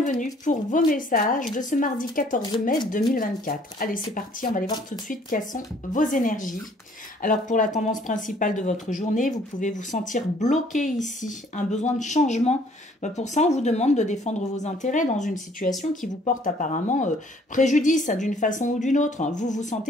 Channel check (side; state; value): both; normal; correlation 0.59